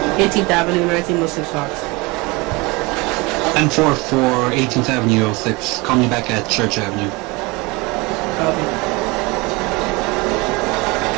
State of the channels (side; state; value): left; quieter; 25.1 dB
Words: 18th Avenue, 1906 Fox. 10-4 for 18th Avenue, 06. Call me back at Church Avenue. Copy.